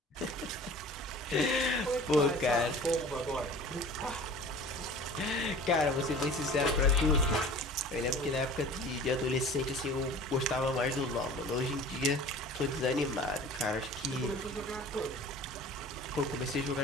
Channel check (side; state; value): both; normal; correlation 0.43